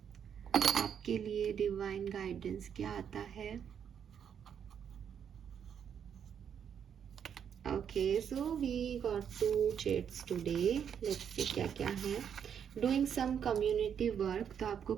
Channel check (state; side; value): quieter; left; 8.1 dB